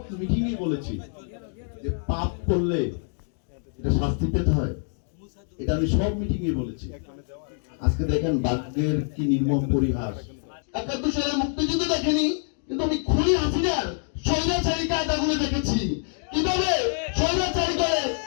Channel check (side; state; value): right; silent; 60 dB below the other